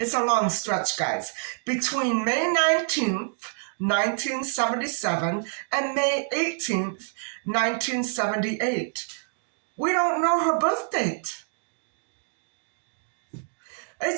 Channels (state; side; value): silent; left; digital silence